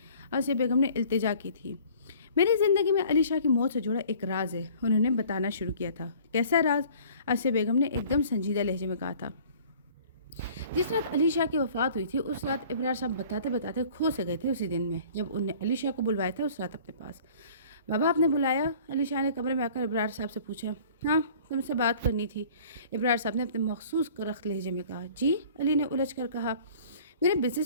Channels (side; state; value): both; inverted; correlation -0.50